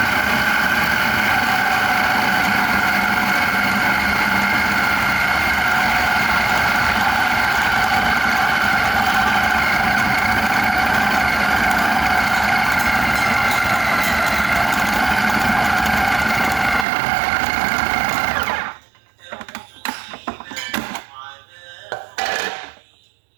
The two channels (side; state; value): left; drops out; at 16.9 s